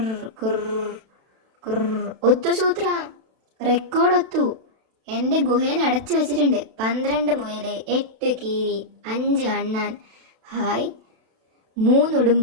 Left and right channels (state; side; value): late; left; 32 ms